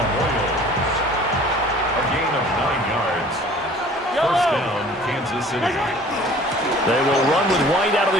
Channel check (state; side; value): normal; both; correlation 0.49